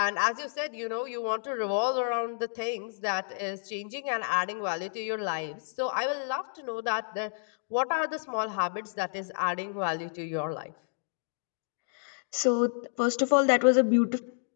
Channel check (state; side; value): silent; right; digital silence